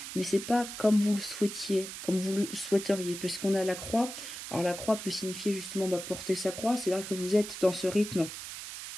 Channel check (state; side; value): noise; right; hiss, 9 dB below the sound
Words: mais c'est pas comme vous le souhaitiez, comme vous le souhaiteriez. Puisqu'on a la croix. Alors, la croix peut signifier justement porter sa croix. C'est-à-dire que vous êtes dans ce rythme